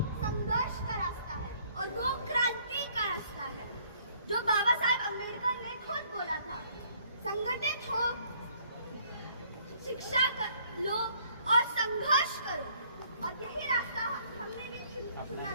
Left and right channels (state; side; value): inverted; both; correlation -0.62